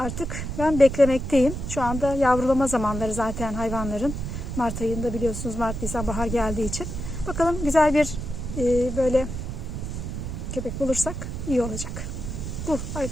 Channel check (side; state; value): right; noise; rumble, 5 dB below the sound